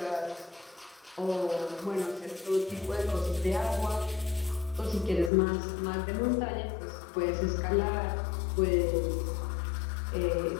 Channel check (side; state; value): right; drops out; at 5.3 s